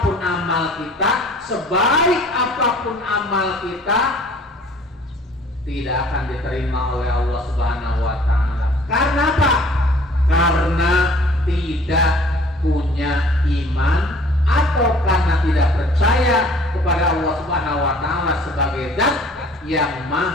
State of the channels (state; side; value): normal; both; correlation 0.53